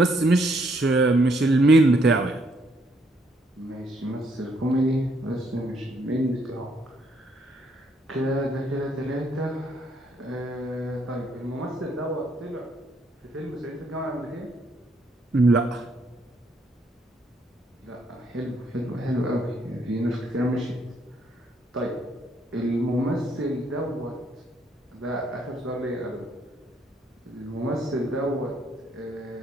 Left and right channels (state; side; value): normal; both; correlation 0.71